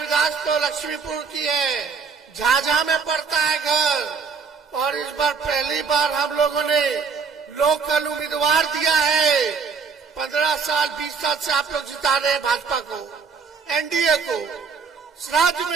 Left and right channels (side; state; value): left; quieter; 5.5 dB